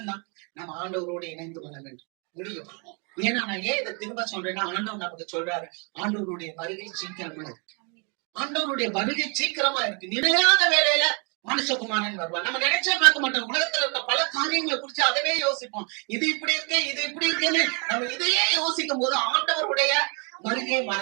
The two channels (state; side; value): quieter; left; 34.9 dB